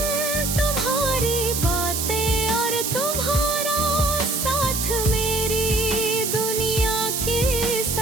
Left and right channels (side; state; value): right; noise; hiss, 1 dB below the sound